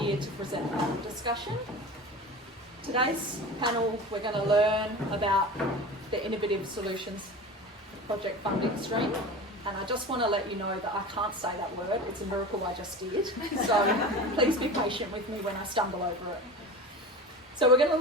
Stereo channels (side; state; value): both; normal; correlation 0.33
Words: to present a panel discussion. Today's panel, we're going to learn about the Innovative Solutions project funding stream. And I just want to let you know that I can't say that word. It's a miracle I just did. So please be patient with me when I stumble over it. So we're going to